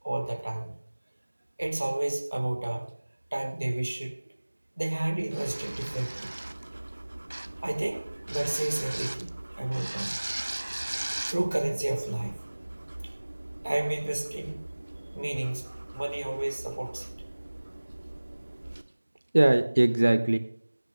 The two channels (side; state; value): both; inverted; correlation -1.00